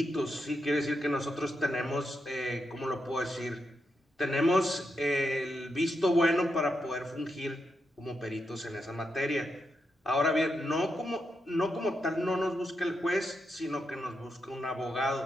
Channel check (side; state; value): both; normal; correlation 0.84